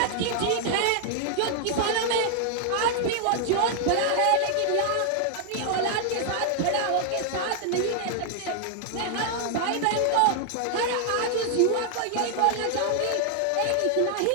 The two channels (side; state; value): both; different; correlation 0.00